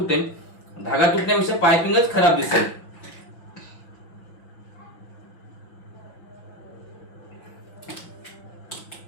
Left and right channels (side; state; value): right; late; 5.9 ms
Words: धागा तुटण्यापेक्षा पायपिंगच खराब दिसेल.